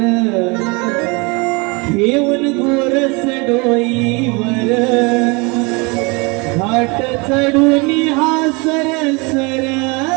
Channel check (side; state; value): left; quieter; 28.5 dB